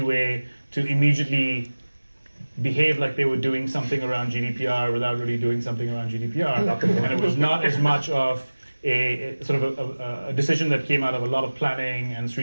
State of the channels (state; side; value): inverted; both; correlation -1.00